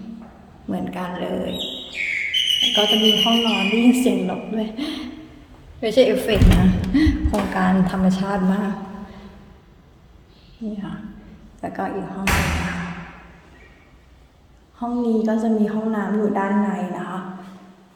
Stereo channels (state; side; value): identical; both; correlation 1.00